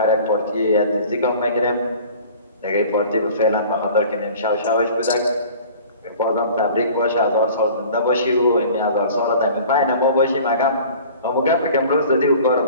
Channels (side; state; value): both; inverted; correlation -0.45